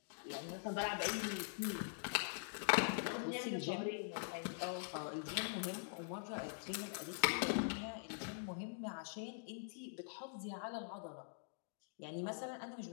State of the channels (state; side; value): silent; right; digital silence